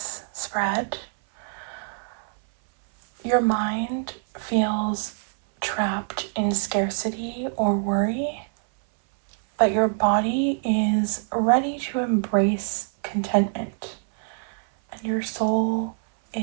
spread, your mind feels trapped in scarcity or worry, but your body is ready to embrace contentment, and your soul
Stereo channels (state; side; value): silent; left; 59 dB below the other